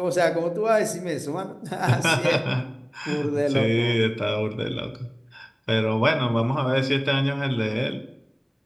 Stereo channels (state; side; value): identical; both; correlation 1.00